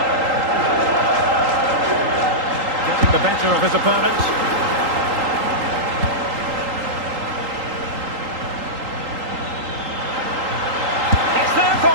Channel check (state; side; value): late; left; 3.8 ms